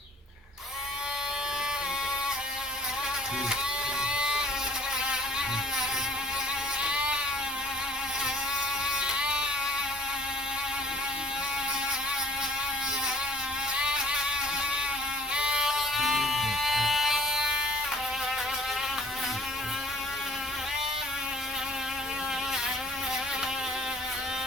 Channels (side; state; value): both; normal; correlation 0.50